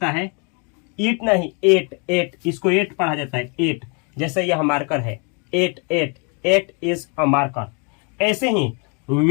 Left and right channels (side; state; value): right; quieter; 35.5 dB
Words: है ईट, नहीं एट, इसको एट पढ़ा जाता है, एट। जैसे यह मार्कर है, एट इज अ मार्कर। ऐसे ही